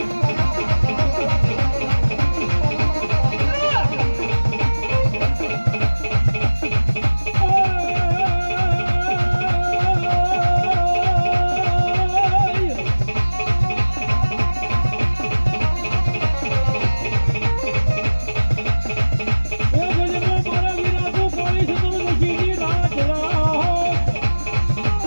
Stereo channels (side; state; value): both; inverted; correlation -1.00